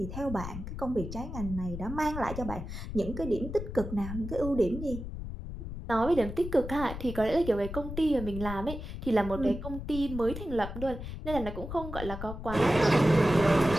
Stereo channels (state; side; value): noise; left; rumble, 8 dB below the sound